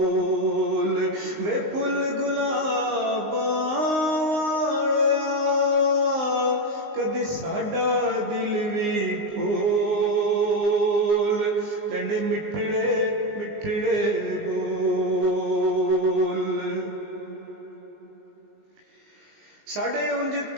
वे फुल गुलाबां कदी साडा दिल भी फूल, तेंडे मिठड़े मिठड़े बोल। साडे उंज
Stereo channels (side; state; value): left; late; 19 ms